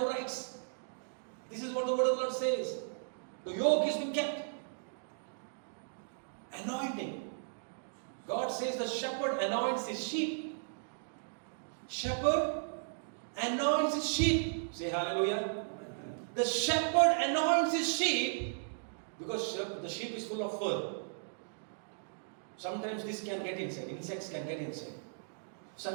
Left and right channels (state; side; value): silent; left; digital silence